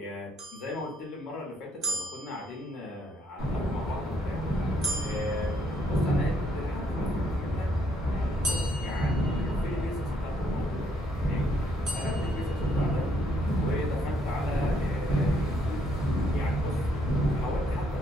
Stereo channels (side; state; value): both; normal; correlation 0.71